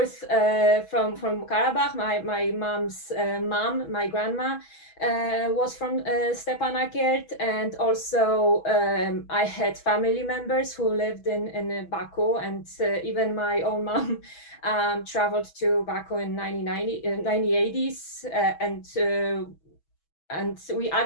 from Karabakh. My mom's mom, my grandma, was from Stepanakert, and also I had family members who lived in Baku, and even my own mom traveled to Baku in 1980s, and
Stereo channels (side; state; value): right; late; 6.2 ms